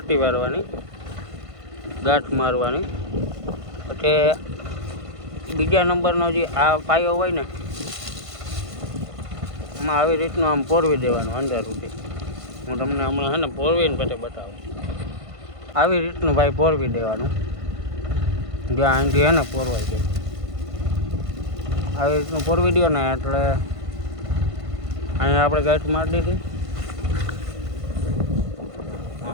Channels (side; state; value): left; late; 1.5 ms